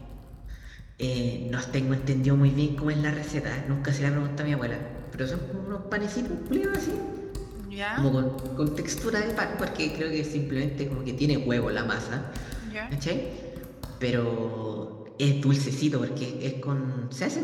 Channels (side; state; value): both; identical; correlation 1.00